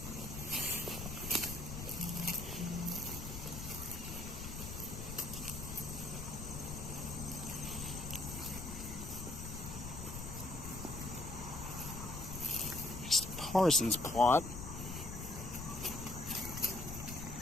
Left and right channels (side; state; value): left; noise; rumble, 7 dB below the sound